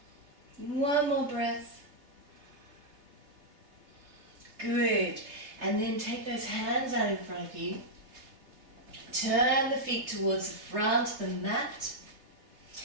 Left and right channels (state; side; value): late; left; 3.3 ms